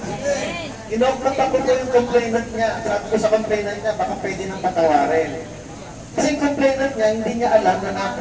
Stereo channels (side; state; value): both; identical; correlation 1.00